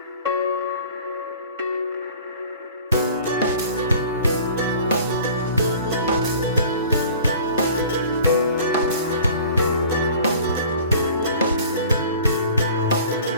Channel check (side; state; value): both; inverted; correlation -0.46